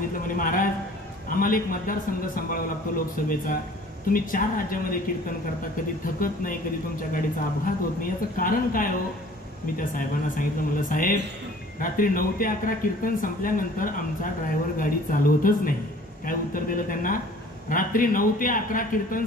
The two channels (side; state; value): both; normal; correlation 0.50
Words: म्हणे महाराज आम्हाला एक मतदारसंघ सांभाळावा लागतो लोकसभेचा. तुम्ही 4 राज्यामध्ये कीर्तन करता, कधी थकत नाही, कधी तुमच्या गाडीचा अपघात होत नाही, याचं कारण काय हो. मी त्या साहेबांना सांगितलं, म्हणलं साहेब रात्री 9 ते 11 कीर्तन संपल्यानंतर आमचा ड्रायव्हर गाडी चालवतच नाही. काय उत्तर दिलं त्यांना, रात्री 9 ते 11 कीर्तन